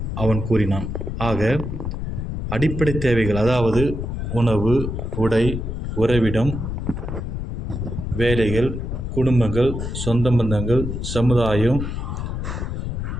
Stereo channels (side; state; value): left; noise; rumble, 4 dB below the sound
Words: அவன் கூறினான். ஆக அடிப்படை தேவைகள், அதாவது உணவு, உடை, உறைவிடம், வேலைகள், குடும்பங்கள், சொந்த பந்தங்கள், சமுதாயம்,